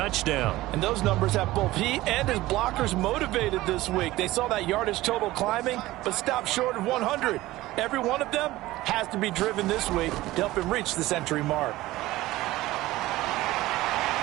And those numbers have both he and his blockers motivated this week. They saw that yardage total climbing, but stopped short of 100. Every one of them has to be driven this week to help him reach the century mark.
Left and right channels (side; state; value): left; quieter; 17.5 dB